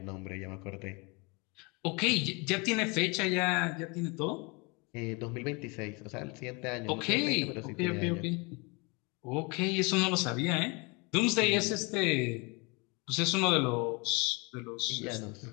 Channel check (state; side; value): quieter; right; 29.3 dB